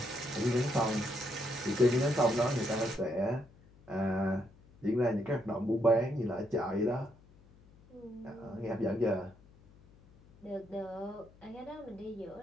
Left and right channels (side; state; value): left; noise; hum, 26 dB below the sound